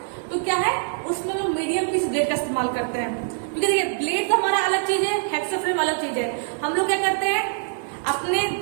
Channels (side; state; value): left; silent; 57 dB below the other